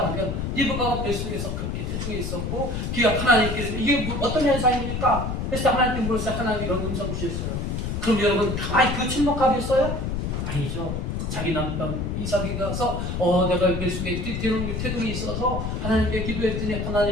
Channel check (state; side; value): noise; left; rumble, 3 dB below the sound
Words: 리브가가 뱃속에서 그렇게 태중에 있었고, 그가 하나님께서 이게 어떤 현상입니까? 그래서 하나님께 물었어요. 하나님 이런 음성 주셨어요. 그럼 여러분 가만히 그 침묵하겠어요? 아니죠. 자기 남편 이삭이 가서 내가 뱃속에 태동이 있어서 하나님께 기도했더니